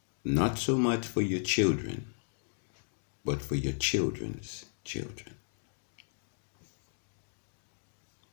Not so much for your children, but for your children's children.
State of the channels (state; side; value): silent; right; digital silence